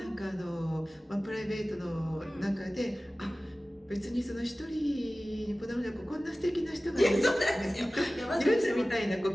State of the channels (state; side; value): normal; both; correlation 0.97